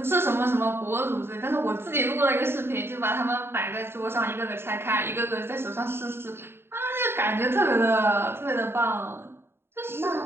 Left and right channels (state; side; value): late; left; 0.11 ms